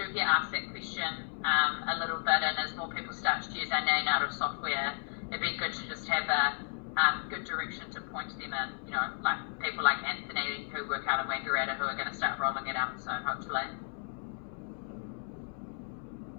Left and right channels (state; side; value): silent; right; 55 dB below the other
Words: get asked that question a little bit, and as more people start to use our neonatal software, it'd be good to just have a good direction to point them in, like people like Anthony who work out of Wangaratta who are going to start rolling it out soon, hopefully.